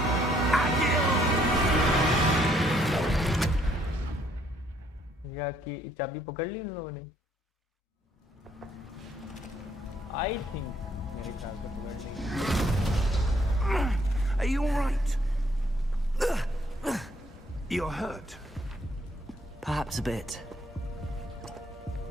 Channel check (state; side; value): normal; both; correlation 0.67